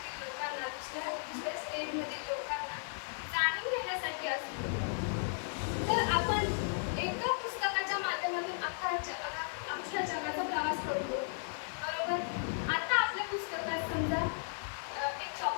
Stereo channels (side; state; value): right; silent; digital silence